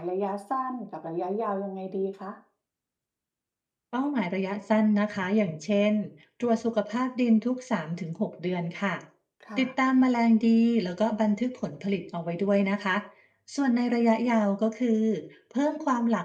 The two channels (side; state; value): both; identical; correlation 1.00